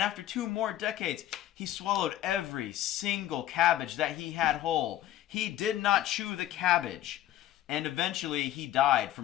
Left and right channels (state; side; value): quieter; right; 13.2 dB